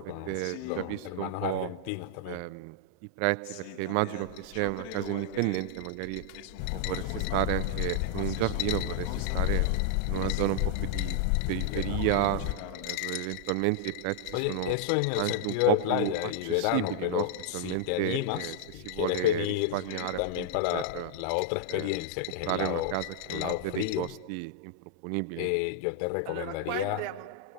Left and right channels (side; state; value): both; different; correlation -0.01